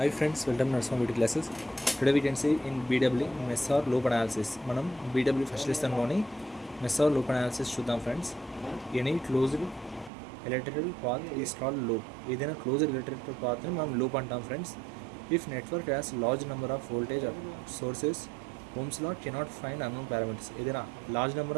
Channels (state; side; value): drops out; left; at 10.1 s